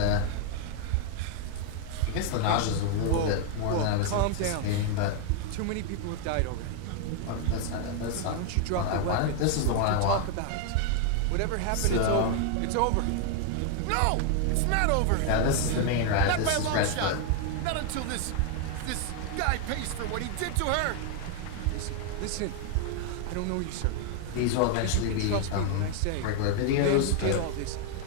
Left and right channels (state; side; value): different; both; correlation 0.00